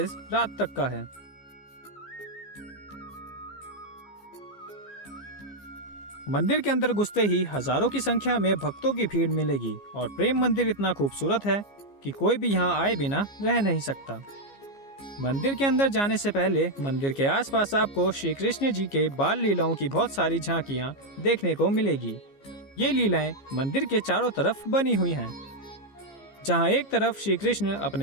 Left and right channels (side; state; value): right; late; 15 ms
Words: रात तक का है। मंदिर के अंदर घुसते ही हजारों की संख्या में भक्तों की भीड़ मिलेगी और प्रेम मंदिर इतना खूबसूरत है कि कोई भी यहाँ आए बिना रह नहीं सकता। मंदिर के अंदर जाने से पहले मंदिर के आसपास आपको श्री कृष्ण जी के बाल लीलाओं की बहुत सारी झांकियाँ देखने को मिलेगी। ये लीलाएं मंदिर के चारों तरफ बनी हुई हैं, जहाँ एक तरफ श्री कृष्ण